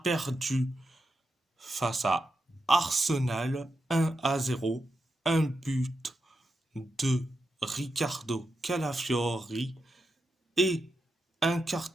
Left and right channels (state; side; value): normal; both; correlation 0.87